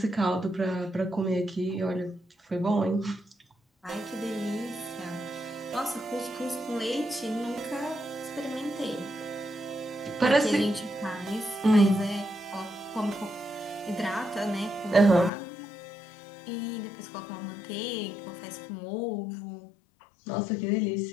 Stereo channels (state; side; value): drops out; right; at 15.3 s